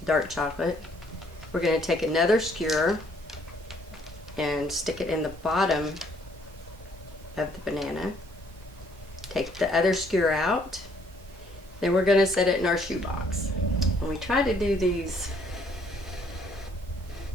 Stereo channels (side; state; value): both; normal; correlation 0.65